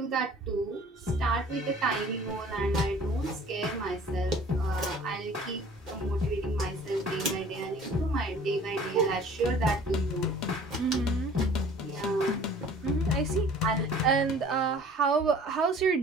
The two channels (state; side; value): normal; both; correlation 0.49